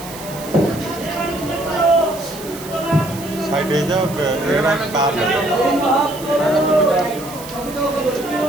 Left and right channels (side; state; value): right; noise; hiss, 15 dB below the sound